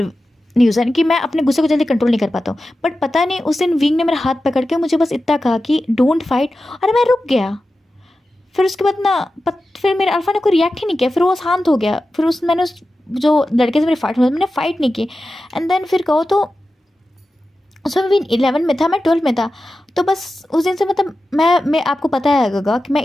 न्यूज़न कि मैं अपने गुस्से को जल्दी कंट्रोल नहीं कर पाता हूँ, बट पता नहीं उस दिन विंग ने मेरा हाथ पकड़ के मुझे बस इतना कहा कि डोंट फाइट, और मैं रुक गया। फिर उसके बाद ना फिर मेरे अल्फा ने कोई रिएक्ट ही नहीं किया, फिर वो शांत हो गया। फिर मैंने उस जो लड़के से मेरी फाइट हुई मैंने फ़ाइट नहीं की। एंड देन फिर कहो तो उसमें भी 11 में था, मैं 12 में था। तो बस उस दिन से मतलब मैं आपको पता है गगा कि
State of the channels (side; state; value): both; normal; correlation 0.93